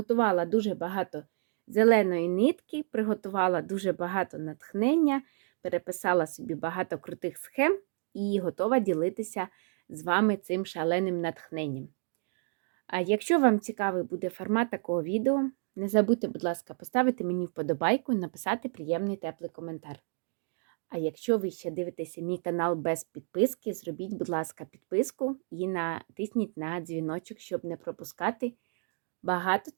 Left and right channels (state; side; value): silent; left; 57 dB below the other